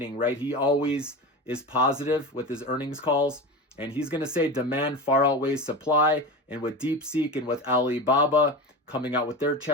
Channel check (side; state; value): both; normal; correlation 0.26